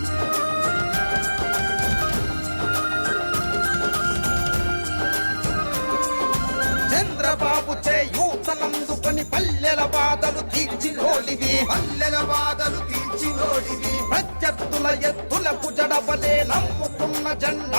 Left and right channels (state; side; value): inverted; both; correlation -1.00